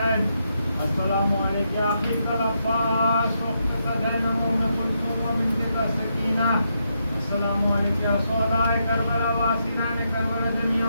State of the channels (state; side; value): inverted; both; correlation -0.81